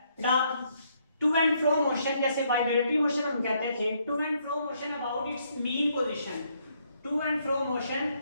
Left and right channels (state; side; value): inverted; both; correlation -0.72